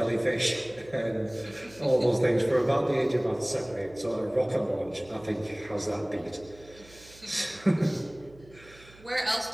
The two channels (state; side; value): noise; right; hum, 23 dB below the sound